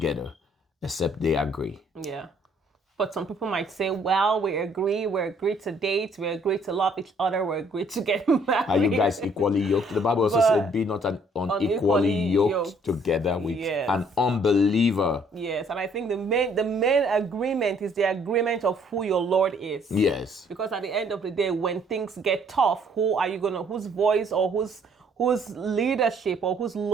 except they agree. Yeah. But some people might say, well, we agree to date, we agree to love each other, we agree to get married. Are you guys equally yoked? The Bible also said, be not unequally yoked together with an unbeliever. Yes, and I think the main agreement is the agreement of who your Lord is. Yes. Because at the end of the day, when things get tough, whose voice or whose leadership or whose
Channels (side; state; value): both; normal; correlation 0.63